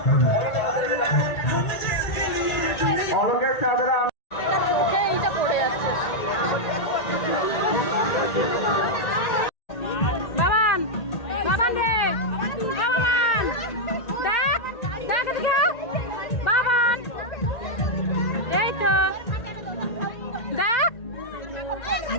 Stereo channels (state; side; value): late; right; 1.8 ms